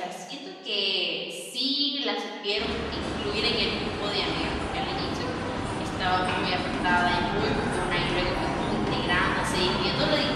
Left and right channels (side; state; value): both; identical; correlation 1.00